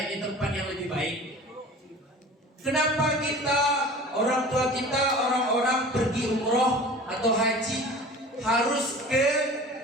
tempat yang lebih baik. Kenapa kita, orang tua kita, orang-orang pergi umroh atau haji harus ke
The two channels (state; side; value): normal; both; correlation 0.41